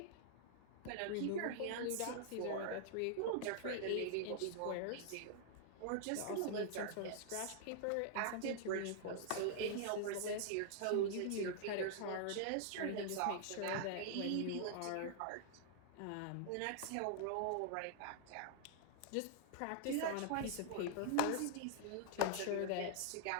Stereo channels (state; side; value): different; both; correlation -0.01